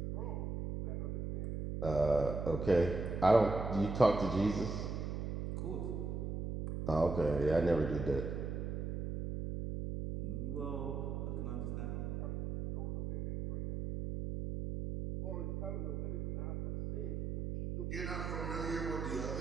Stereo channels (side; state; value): right; noise; hum, 3 dB below the sound